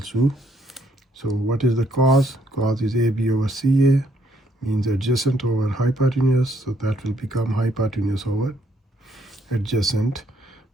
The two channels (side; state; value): both; normal; correlation 0.70